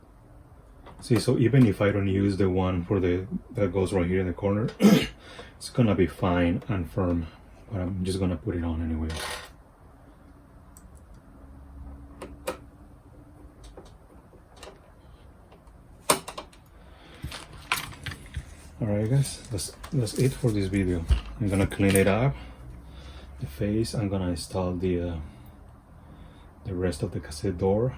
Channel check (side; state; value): both; identical; correlation 1.00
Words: See, so even if I don't use the one for that goes right here in the corner, it's gonna be fine and firm, but I'm just gonna put it on anyway. Alright guys, that's it for this video. I'm gonna clean it up, the face. I'm gonna install the rest of the cassette door.